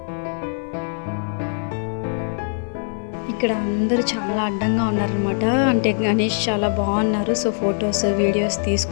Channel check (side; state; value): right; silent; 56 dB below the other